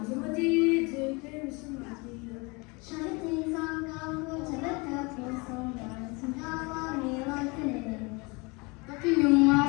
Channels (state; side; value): quieter; right; 27.8 dB